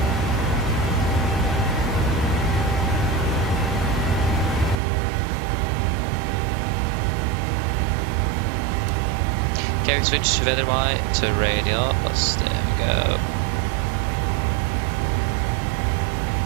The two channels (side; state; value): left; drops out; at 4.8 s